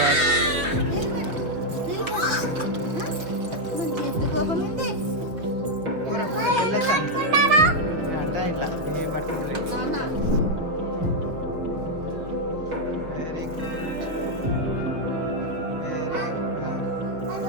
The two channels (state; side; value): late; left; 6.1 ms